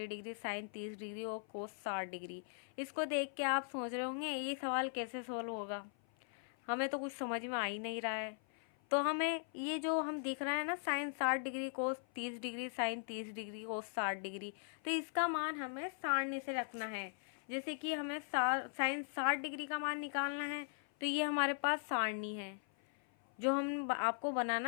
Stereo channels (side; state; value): right; silent; 51 dB below the other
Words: डिग्री, साइन 30 डिग्री और कोस 60 डिग्री। इसको देख के आप सोच रहे होंगे ये सवाल कैसे सोल्व होगा, हमें तो कुछ समझ में आ ही नहीं रहा है। तो हमें ये जो हम दिख रहा है ना साइन 60 डिग्री, कोस 30 डिग्री, साइन 30 डिग्री, कोस 60 डिग्री, तो इसका मान हमें सारणी से रखना है। जैसे कि हमें साइन 60 डिग्री का मान निकालना है, तो ये हमारे पास सारणी है जो हम आपको